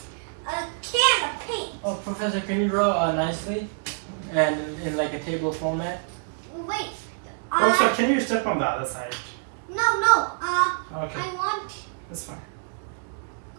A can of paint. Oh, Professor, can you draw nicely and in like a table format? Wait. Also, can you step on the other side? No. Okay. I want. That's fine.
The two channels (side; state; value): left; silent; digital silence